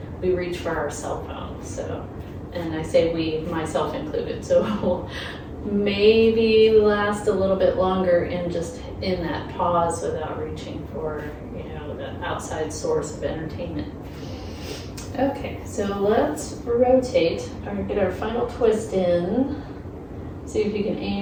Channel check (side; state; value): both; identical; correlation 1.00